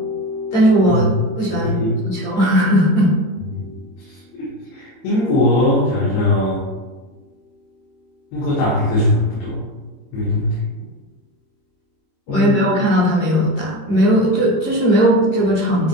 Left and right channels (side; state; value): right; late; 22 ms